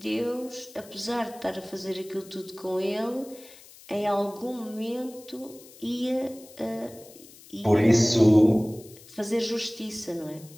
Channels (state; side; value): noise; left; hiss, 21 dB below the sound